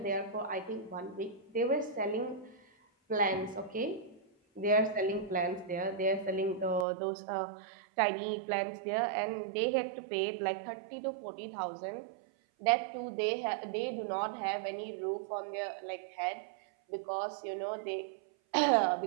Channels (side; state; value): left; drops out; at 6.9 s